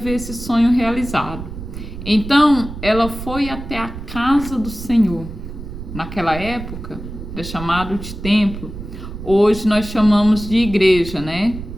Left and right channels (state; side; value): noise; right; rumble, 10 dB below the sound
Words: esse sonho realizado. Então, ela foi até a casa do Senhor. Naquela época, é chamado de templo. Hoje nós chamamos de igreja, né?